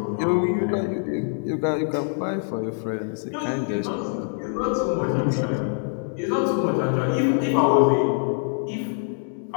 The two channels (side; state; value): right; silent; 59 dB below the other